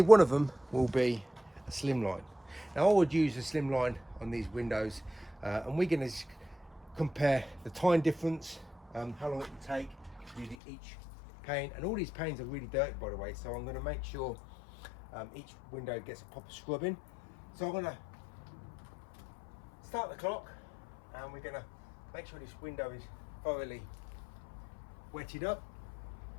one of them will be a slimline. Now I would use a slimline on these windows, and we're going to compare the time difference, how long it will take to do each pane, and all these panes are really dirty, by the way, so I'm going to make sure each window gets a proper scrubbing. So I'm going to start the clock, and we're going to make sure this window is thoroughly wetted up,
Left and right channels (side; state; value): right; drops out; at 10.6 s